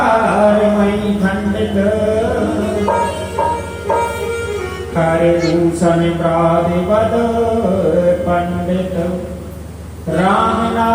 मई खंडित हरे भूषण प्रादिपद पंडित राम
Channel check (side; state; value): both; identical; correlation 1.00